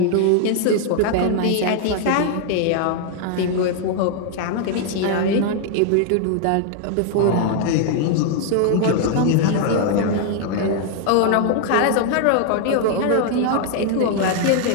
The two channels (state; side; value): different; both; correlation 0.00